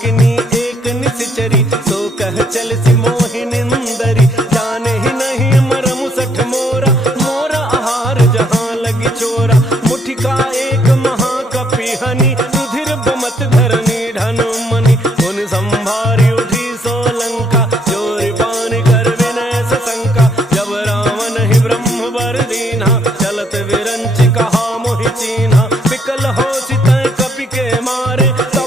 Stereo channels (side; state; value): both; normal; correlation 0.69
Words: एक निश्चरी सो कह चल सि मोहि निंदरी जाने ही नहीं मरम सठ मोरा मोरा आहार जहाँ लगी चोरा मुठिका एक महाकपि हनि रुधिर बमत धरनी ढन मनि उन संभारी उठी सो लंका जोरि पान कर विनय सशंका जब रावण ही ब्रह्म वर दीन्हा चलत विरंच कहा मोहि चीन्हा विकल हो सितय कपि के मारे